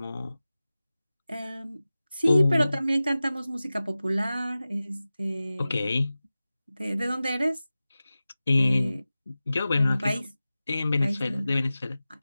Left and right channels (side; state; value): both; inverted; correlation -0.95